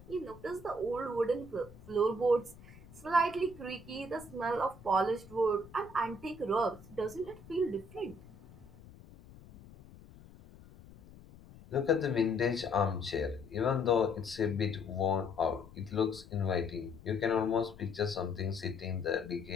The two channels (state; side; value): noise; left; rumble, 20 dB below the sound